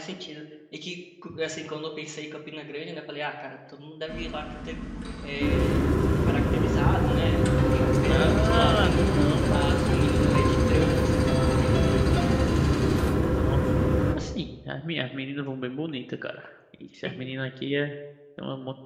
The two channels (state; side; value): identical; both; correlation 1.00